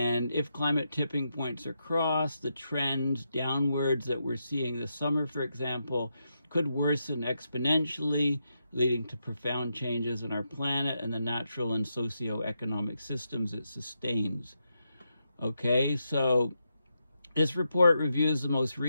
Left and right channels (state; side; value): inverted; both; correlation -0.84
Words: if climate tipping points are crossed, the trends downwards that we're seeing this summer, for example, could worsen exponentially, leading to profound changes in our planet and the natural and socioeconomic systems it sustains. Okay, so this report reviews the most